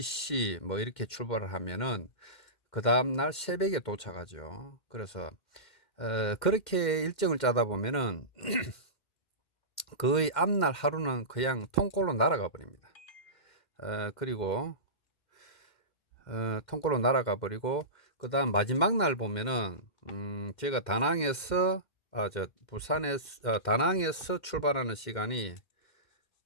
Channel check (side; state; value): right; late; 2.1 ms